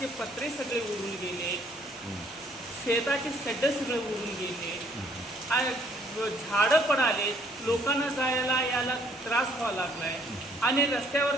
पत्रे सगळे उडून गेले, शेताचे सड्डे सगळे उडून गेले आणि झाडं पडाले, लोकांना जायला यायला त्रास व्हावा लागलाय आणि रस्त्यावर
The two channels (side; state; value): both; normal; correlation 0.63